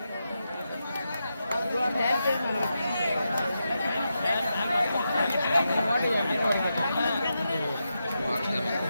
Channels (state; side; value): inverted; both; correlation -0.87